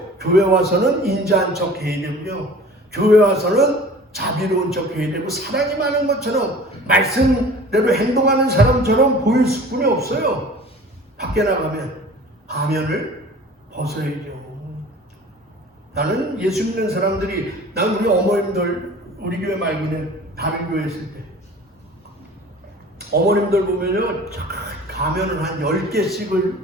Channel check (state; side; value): normal; both; correlation 0.44